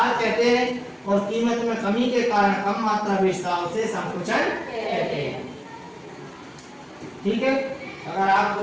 कहते हैं, और कीमत में कमी के कारण कम मात्रा बेचता है उसे संकुचन कहते हैं। ठीक है, अगर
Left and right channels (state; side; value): identical; both; correlation 1.00